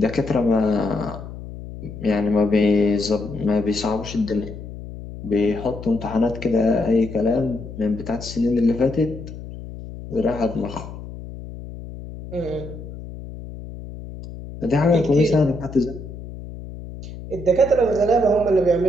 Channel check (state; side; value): noise; left; hum, 12 dB below the sound